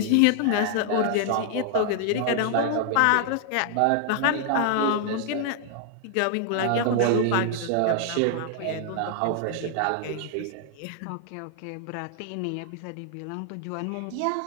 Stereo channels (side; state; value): both; different; correlation 0.00